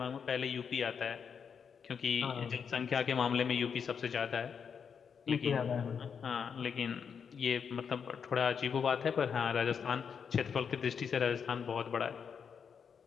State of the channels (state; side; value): quieter; right; 6.7 dB